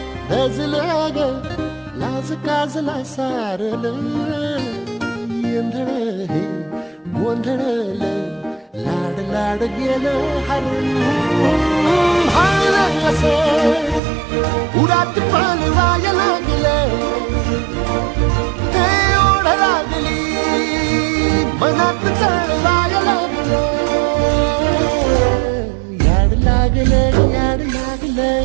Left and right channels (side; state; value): left; drops out; at 14.0 s